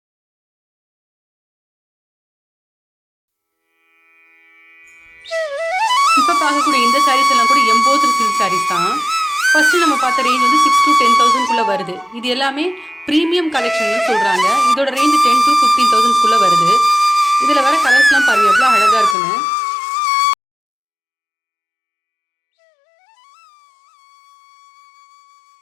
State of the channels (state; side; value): drops out; right; at 19.2 s